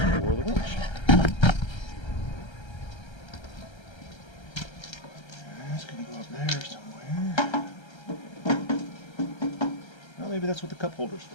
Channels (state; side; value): late; right; 1.3 ms